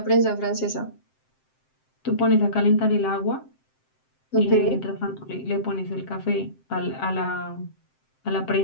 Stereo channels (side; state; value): right; late; 7.7 ms